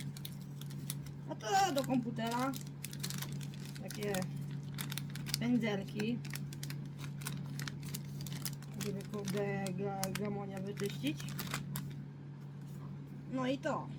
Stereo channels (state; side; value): identical; both; correlation 1.00